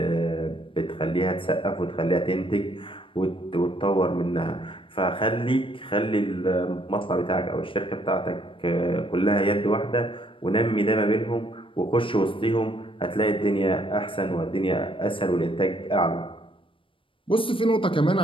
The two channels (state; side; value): late; right; 0.25 ms